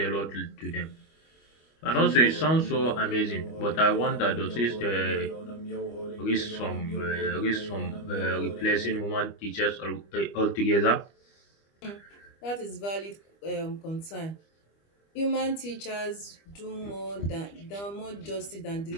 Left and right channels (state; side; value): late; right; 25 ms